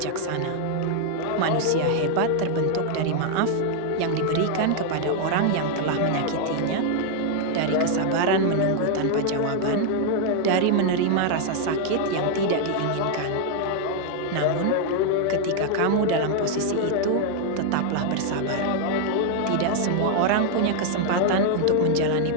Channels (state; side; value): different; both; correlation 0.00